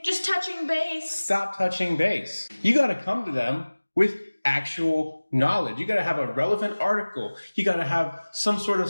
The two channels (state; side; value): inverted; both; correlation -1.00